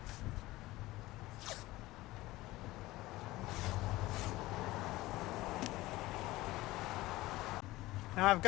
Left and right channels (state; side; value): quieter; right; 18.5 dB